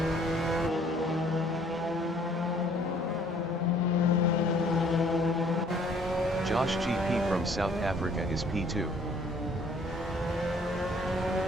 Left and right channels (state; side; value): normal; both; correlation 0.59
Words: Josh GP from South Africa is P2.